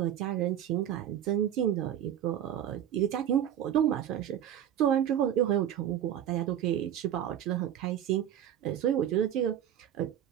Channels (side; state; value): left; quieter; 10.5 dB